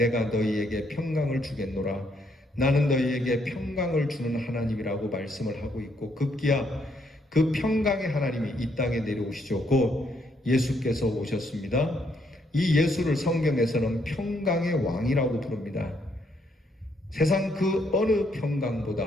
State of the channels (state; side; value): normal; both; correlation 0.73